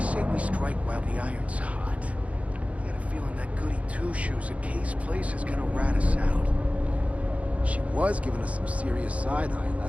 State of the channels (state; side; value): late; left; 0.065 ms